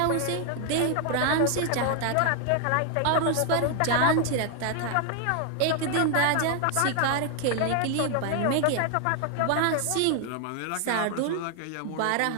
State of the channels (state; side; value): different; both; correlation 0.00